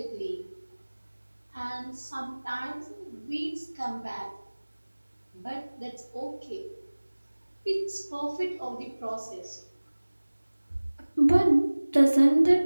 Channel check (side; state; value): both; inverted; correlation -1.00